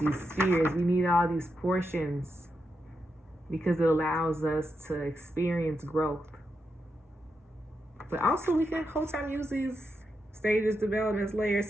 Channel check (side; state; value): both; normal; correlation 0.85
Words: spheres. We need all these portions because it allows us to experience growth. But also we can whole time use these stages, developments, layers,